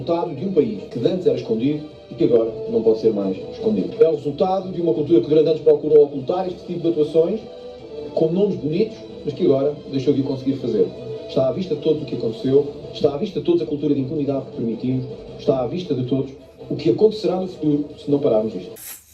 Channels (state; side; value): identical; both; correlation 1.00